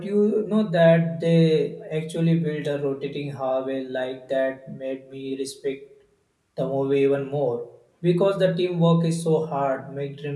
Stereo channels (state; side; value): identical; both; correlation 1.00